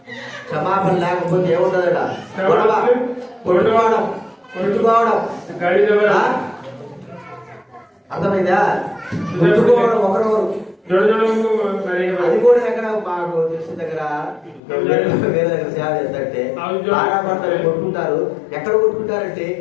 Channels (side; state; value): right; drops out; at 14.6 s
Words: క్షమాపణ లేకపోతే ఏముంటదట? గొడవ, కొట్టుకోవడం, కొట్టుకోవడం. ଗାଳି ଦେବା, అర్థమైందా? కొట్టుకోవడం ఒకరొకరు. ଜଣ ଜଣଙ୍କୁ ମାରିବା। అది కూడా ఎక్కడ మాకు తెలిసిన దగ్గర వేరే దగ్గర సేవ చేస్తుంటే బాగా పడతారు, కొట్టుకుంటారు. ఎక్కడ కొట్టుకుంటారంటే